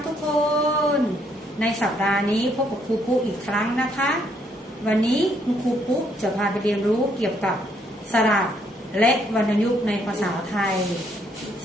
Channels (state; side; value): normal; both; correlation 0.70